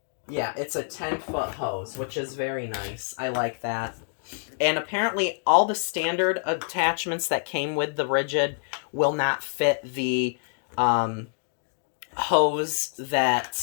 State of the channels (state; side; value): silent; right; digital silence